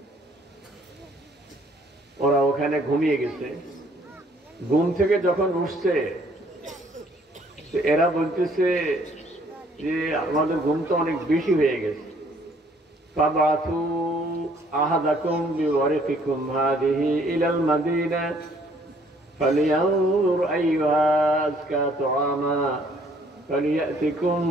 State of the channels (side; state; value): both; normal; correlation 0.62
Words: ওরা ওখানে ঘুমিয়ে গেছে। ঘুম থেকে যখন উঠছে এরা বলতেছে যে আমাদের ঘুম তো অনেক বেশি হয়ে গেছে। ফাবাথু আহাদাকুম বিওয়ারিকিকুম হাদিহি ইলাল মাদিনা فلينظر أيها أزكى طعاما فليأتكم